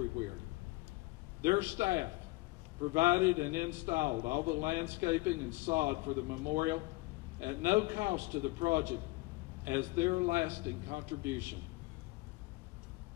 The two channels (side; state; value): right; quieter; 23.0 dB